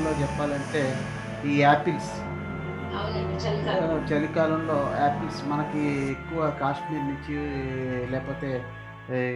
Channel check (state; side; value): identical; both; correlation 1.00